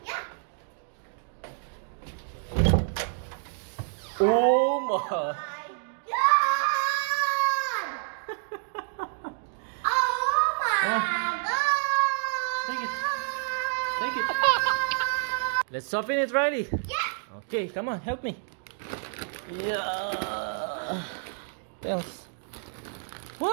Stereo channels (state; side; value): silent; left; 59 dB below the other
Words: Yeah. Oh my! My God! Oh my God! Take it. Take it. Let's open it, Riley. Yeah. Okay, come on, help me. Yeah. Tells.